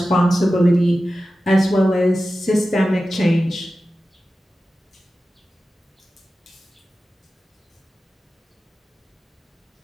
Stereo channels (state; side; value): normal; both; correlation 0.94